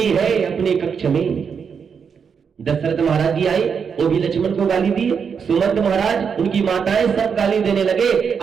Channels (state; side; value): quieter; left; 6.5 dB